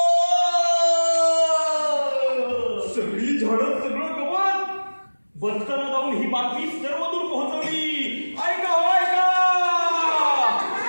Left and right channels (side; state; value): both; inverted; correlation -1.00